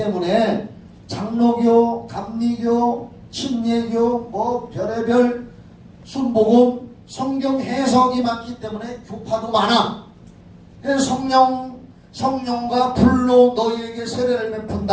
장로교, 감리교, 침례교, 뭐 별의별 순복음 성경 해석이 많기 때문에 교파도 많아. 그래서 성령과 불로 너희에게 세례를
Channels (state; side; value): identical; both; correlation 1.00